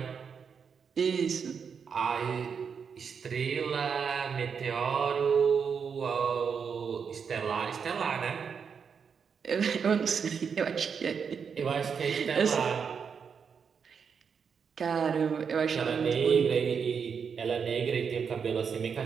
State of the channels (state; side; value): quieter; left; 6.4 dB